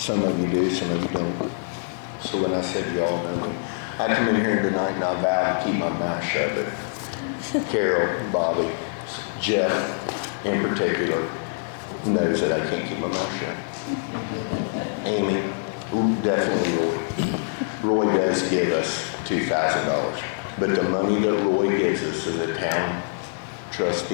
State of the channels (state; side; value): silent; right; digital silence